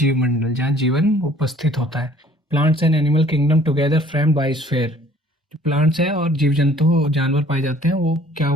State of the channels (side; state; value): both; normal; correlation 0.55